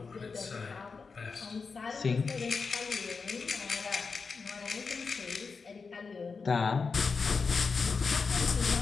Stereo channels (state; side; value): quieter; right; 4.9 dB